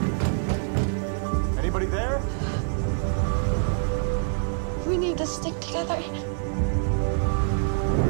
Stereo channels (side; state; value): left; silent; 61 dB below the other